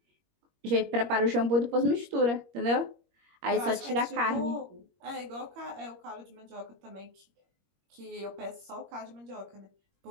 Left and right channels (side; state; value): left; late; 21 ms